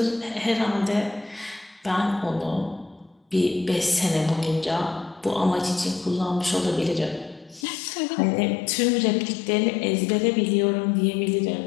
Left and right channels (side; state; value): right; drops out; at 7.7 s